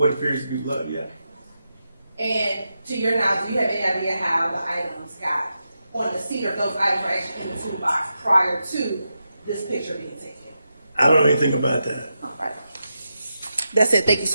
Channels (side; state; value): both; inverted; correlation -0.88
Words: appears to be blood, yeah. And to your knowledge, do you have any idea how the items got on the seat, or if those items were actually in the toolbox prior to this picture being taken? I don't know anything about that. All right. That's it. Thank you